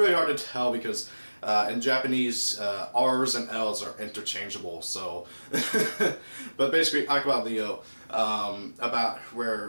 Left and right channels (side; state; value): both; inverted; correlation -1.00